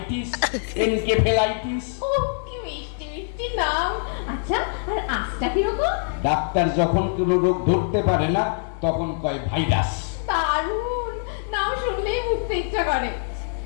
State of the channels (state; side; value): silent; right; digital silence